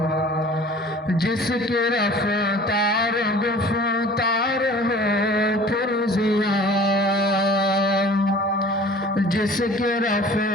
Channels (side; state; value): both; normal; correlation 0.46